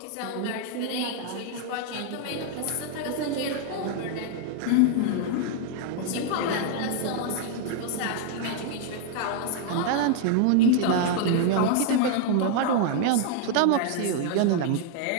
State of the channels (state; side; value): different; both; correlation 0.00